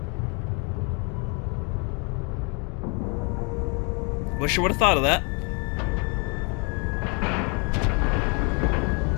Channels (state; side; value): quieter; right; 33.6 dB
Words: Wish I would have thought of that.